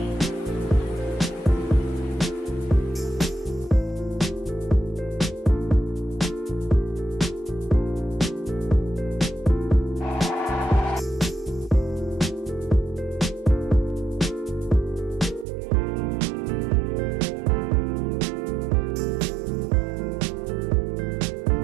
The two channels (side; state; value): left; drops out; at 15.5 s